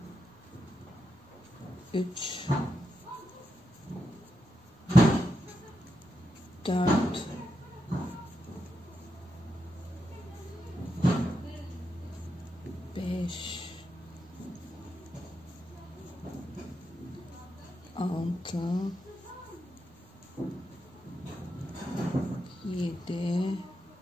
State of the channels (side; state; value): both; normal; correlation 0.85